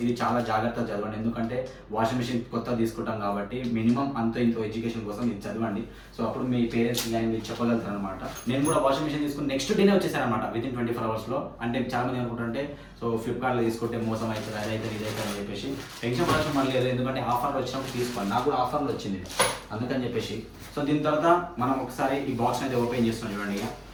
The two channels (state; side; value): identical; both; correlation 1.00